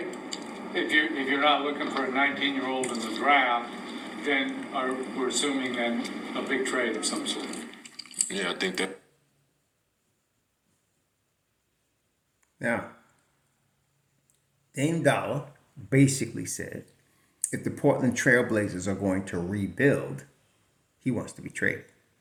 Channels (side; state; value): both; identical; correlation 1.00